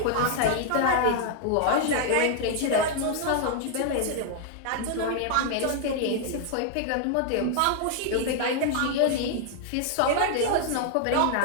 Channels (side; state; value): both; different; correlation 0.00